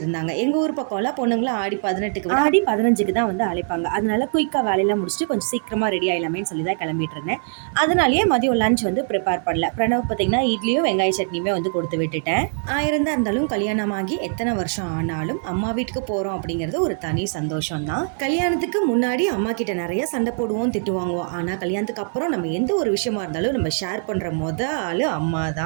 எங்கள் ஊர் பக்கம்லாம் பொண்ணுங்களாம் ஆடி 18க்கு விட ஆடி 15க்கு தான் வந்து அழைப்பாங்க. அதனால குயிக்காக வேலையெல்லாம் முடிச்சுட்டு கொஞ்சம் சீக்கிரமாக ரெடி ஆகலாமேன்னு சொல்லி தான் கிளம்பிட்டு இருந்தேன். அதனாலேயே மதியம் லஞ்ச் வந்து ப்ரிப்பேர் பண்ணல. பிரணவ் பார்த்தீங்கன்னா இட்லியும் வெங்காய சட்னியுமே வந்து கொடுத்து விட்டுட்டேன். ஆயிரம் தான் இருந்தாலும் கல்யாணமாகி எத்தனை வருஷம் ஆனாலும் அம்மா வீட்டுக்கு போகிறோம் அப்படிங்கிறது ஒரு தனி சந்தோஷம் தான். கல்யாணத்துக்கு முன்னாடி அம்மா கிட்ட நிறைய சண்டை போடுவோம், திட்டு வாங்குவோம். ஆனா கல்யாணத்துக்கு அப்புறம் நம்ம எந்த ஒரு விஷயமா இருந்தாலும் நம்ம ஷேர் பண்ற ஆளு அம்மா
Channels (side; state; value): left; silent; 64 dB below the other